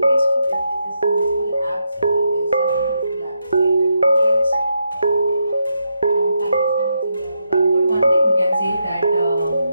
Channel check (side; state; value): both; inverted; correlation -0.82